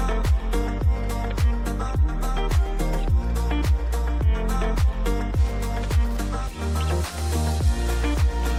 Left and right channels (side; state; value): both; identical; correlation 1.00